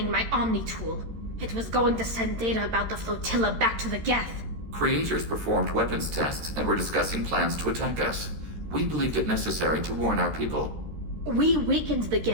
my Omni tool. It was going to send data about the flotilla back to the Geth. Creators performed weapons tests and were discussing plans to attack us. We believed it necessary to warn our people. We weakened the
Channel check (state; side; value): late; left; 13 ms